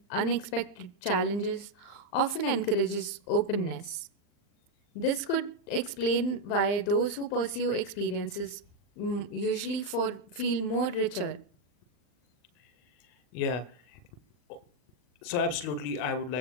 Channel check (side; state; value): right; late; 39 ms